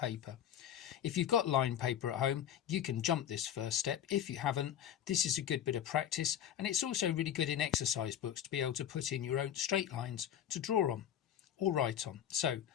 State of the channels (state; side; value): quieter; right; 10.1 dB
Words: If you've got line paper at home, you can jump this first step. If you haven't, this is a good bit of practice, and it's also really good in exercise books to be able to put in your own straight lines to draw on or write on. So